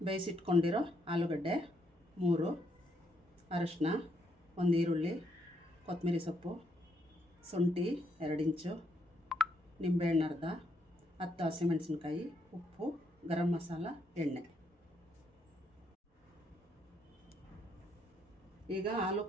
ಬೇಯಿಸಿಟ್ಕೊಂಡಿರೋ ಆಲೂಗಡ್ಡೆ 3, ಅರಿಶಿನ 1 ಈರುಳ್ಳಿ, ಕೊತ್ತಂಬರಿ ಸೊಪ್ಪು, ಶುಂಠಿ 2 ಇಂಚು, ನಿಂಬೆಹಣ್ಣು ಅರ್ಧ, 10 ಹಸಿಮೆಣಸಿನ್ಕಾಯಿ, ಉಪ್ಪು, ಗರಂ ಮಸಾಲ, ಎಣ್ಣೆ. ಈಗ ಆಲೂ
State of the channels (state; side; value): normal; both; correlation 0.74